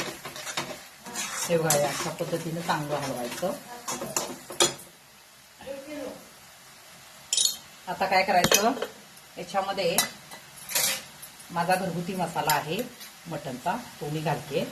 हे बघा, अशा पद्धतीने चांगलं हलवायचं. आता काय करायचं, याच्यामध्ये माझा घरगुती मसाला आहे मटणचा, तो मी घालते.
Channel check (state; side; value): identical; both; correlation 1.00